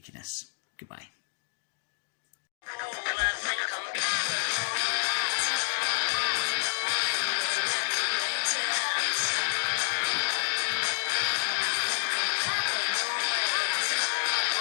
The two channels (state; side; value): silent; right; digital silence